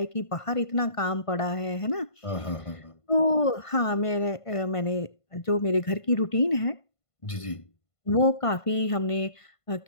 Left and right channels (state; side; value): late; right; 1.5 ms